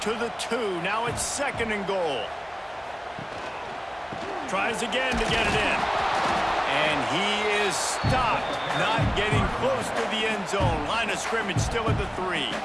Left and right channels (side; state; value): both; identical; correlation 1.00